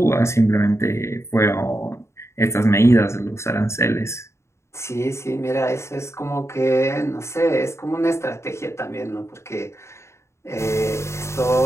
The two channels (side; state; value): right; late; 0.13 ms